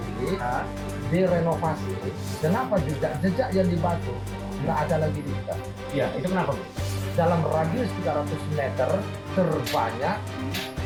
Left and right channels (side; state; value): both; identical; correlation 1.00